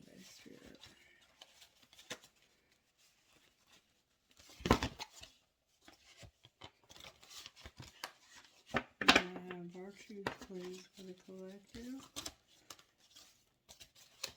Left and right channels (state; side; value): identical; both; correlation 1.00